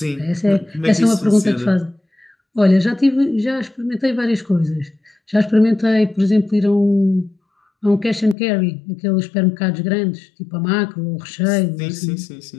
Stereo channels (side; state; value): right; drops out; at 8.3 s